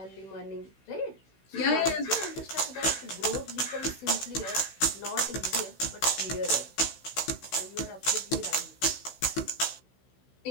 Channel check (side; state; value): right; late; 16 ms